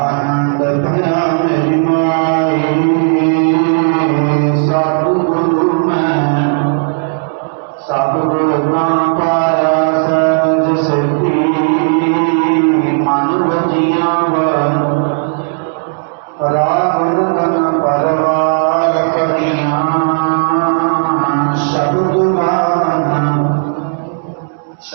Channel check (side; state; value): left; silent; digital silence